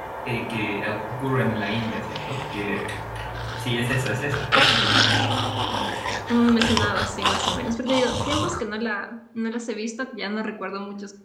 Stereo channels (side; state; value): both; identical; correlation 1.00